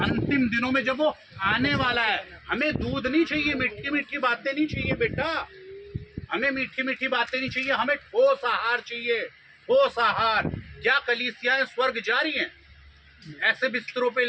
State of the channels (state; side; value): identical; both; correlation 1.00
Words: दिनों में जब वो आने वाला है, हमें दूध नहीं चाहिए, मीठी मीठी बातें नहीं चाहिए बेटा, हमें मीठी मीठी बातें नहीं चाहिए, हमें ठोस आहार चाहिए। ठोस आहार। क्या कलीसियाएं स्वर्ग जा रही हैं? ऐसे बिस्तरों पे